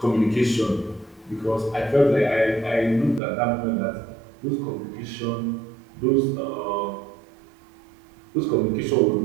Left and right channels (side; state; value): left; drops out; at 3.2 s